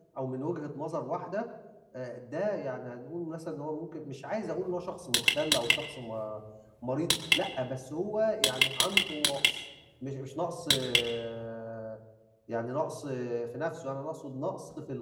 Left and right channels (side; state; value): both; identical; correlation 1.00